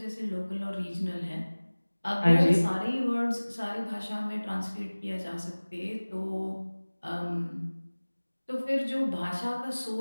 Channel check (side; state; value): both; inverted; correlation -1.00